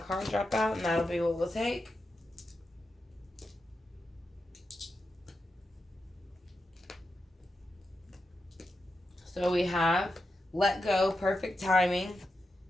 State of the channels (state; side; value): normal; both; correlation 0.88